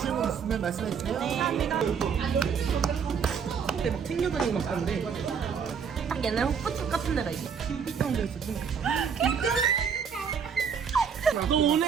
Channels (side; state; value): left; quieter; 6.7 dB